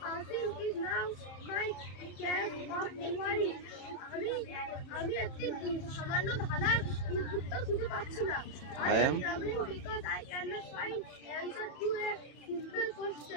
আমি একটি সামান্য ধাঁধার উত্তর খুঁজে পাচ্ছি না। I am traveling because I cannot find answer to a simple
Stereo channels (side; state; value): right; late; 31 ms